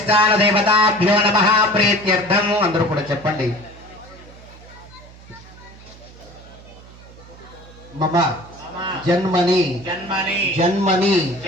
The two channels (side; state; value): right; noise; hum, 21 dB below the sound